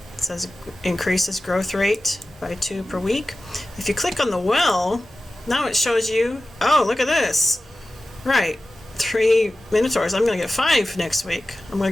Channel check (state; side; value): normal; both; correlation 0.95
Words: it says increases growth rate by 2 per week. If you click on the well, now it shows you, oh, look at this. Right, 3 minotaurs. I'm going to get 5 next week. I'm going